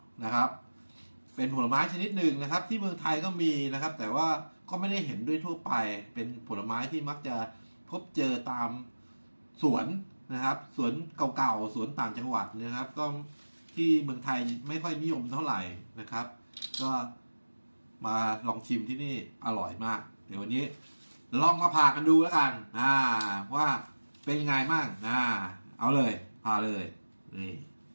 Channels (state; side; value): inverted; both; correlation -1.00